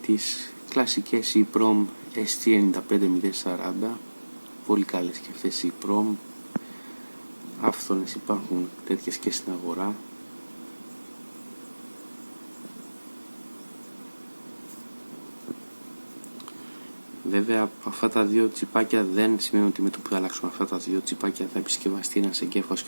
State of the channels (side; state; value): both; inverted; correlation -1.00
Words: τις κλασικές EEPROM ST95040, πολύ καλές και αυτές οι EEPROM. Άφθονες υπάρχουν τέτοιες και στην αγορά. Βέβαια αυτά τα δύο τσιπάκια δεν σημαίνει ότι με το που θα αλλάξουμε αυτά τα δύο τσιπάκια θα επισκευαστεί ένας εγκέφαλος